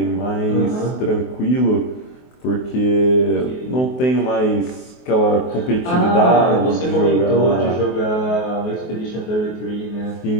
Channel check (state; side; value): late; right; 23 ms